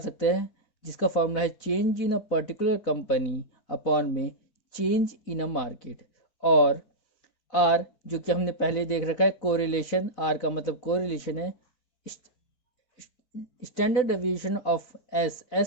सकते हैं, जिसका फॉर्मूला है change in a particular company upon में चेंज इन अ मार्केट। और आर, जो कि हमने पहले देख रखा है कोरिलेशन, आर का मतलब कोरिलेशन है। स्टैंडर्ड डेविएशन ऑफ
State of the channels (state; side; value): late; right; 4.4 ms